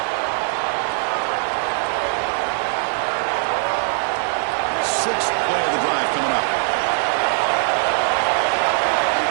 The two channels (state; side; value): silent; left; 55 dB below the other